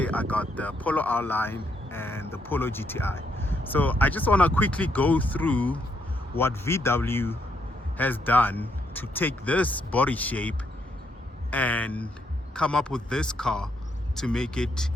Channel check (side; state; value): both; normal; correlation 0.75